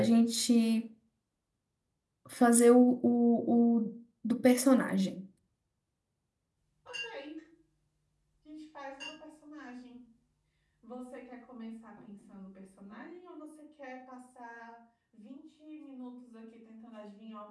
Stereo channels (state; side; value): identical; both; correlation 1.00